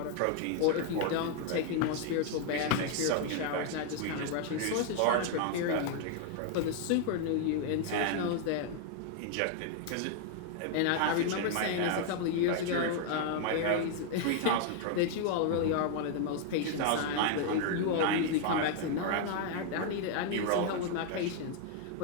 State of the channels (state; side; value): different; both; correlation 0.00